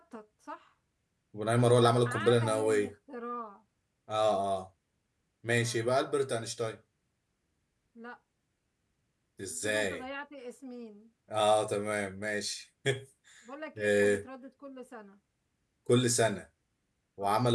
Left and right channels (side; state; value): both; identical; correlation 1.00